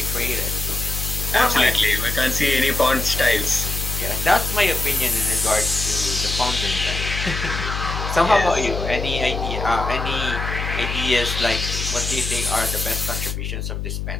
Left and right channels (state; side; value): noise; left; hum, 4 dB below the sound